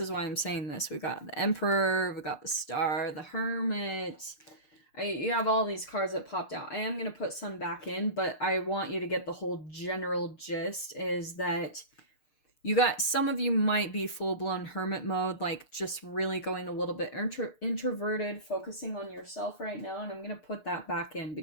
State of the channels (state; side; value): late; right; 6.6 ms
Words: why I'm saying this. We got the Emperor, we got the Star, the Hermit. You have all these cards that popped out. I am going to put some back in, but I want you to get the whole general gist is that some of you might be full-blown hermit mode, like just really going a little bit introverted, focusing on yourself right now. And I'm going to put that back in